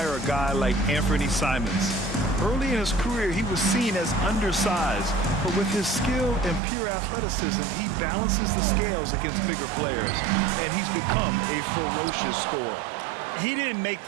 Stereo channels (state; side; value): drops out; left; at 6.6 s